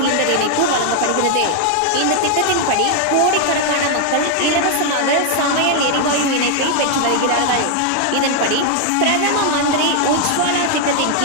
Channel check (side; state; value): both; different; correlation 0.00